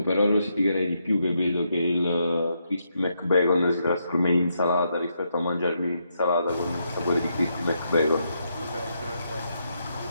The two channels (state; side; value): inverted; both; correlation -0.80